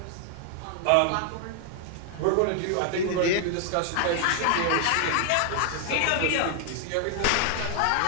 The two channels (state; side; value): different; both; correlation 0.00